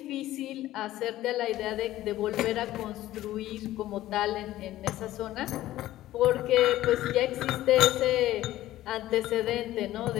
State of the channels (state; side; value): quieter; right; 14.8 dB